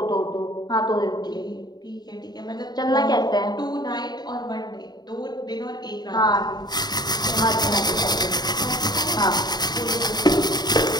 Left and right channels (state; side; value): late; right; 0.20 ms